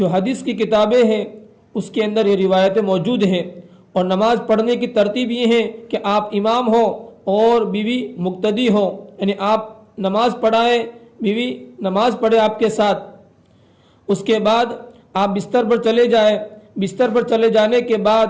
حدیث کی کتابیں ہیں اس کے اندر یہ روایتیں موجود ہیں۔ اور نماز پڑھنے کی ترتیب یہ ہے کہ آپ امام ہو اور بیوی مقتدی ہو، یعنی آپ نماز پڑھائیں، بیوی نماز پڑھے آپ کے ساتھ۔ اس کے بعد آپ بستر پر چلے جائیں۔ بستر پر چلے جانے کے بعد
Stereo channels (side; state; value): both; identical; correlation 1.00